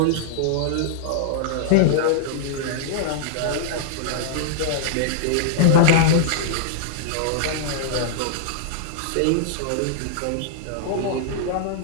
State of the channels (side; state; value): both; different; correlation -0.01